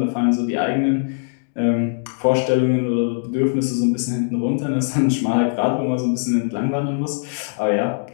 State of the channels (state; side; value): silent; right; digital silence